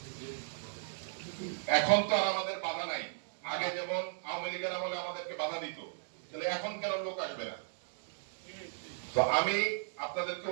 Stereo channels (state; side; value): silent; left; digital silence